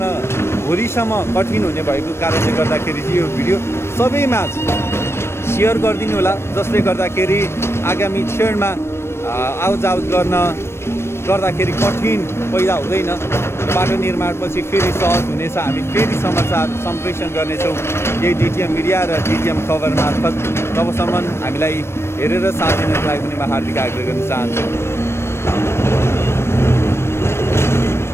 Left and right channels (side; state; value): right; late; 0.12 ms